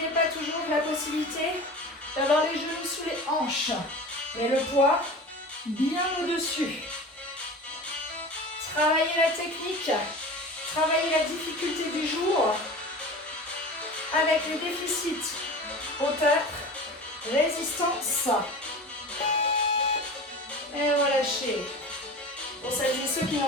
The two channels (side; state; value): both; normal; correlation 0.35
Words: pas toujours la possibilité d'avoir les genoux sous les hanches, mais le poids bien au-dessus. Travaillez la technique, travaillez la difficulté du jour avec les déficits, hauteur, résistance. Et relâchez. Pour celles et ceux qui